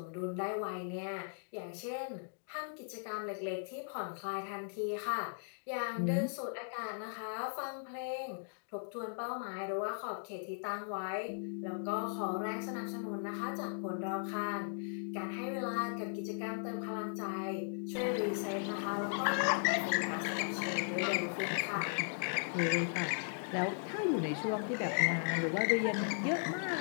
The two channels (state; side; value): silent; right; digital silence